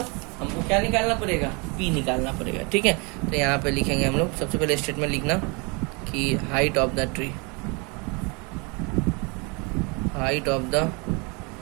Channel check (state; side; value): quieter; left; 30.7 dB